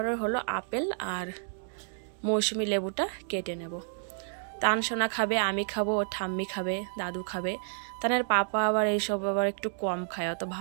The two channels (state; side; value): silent; left; digital silence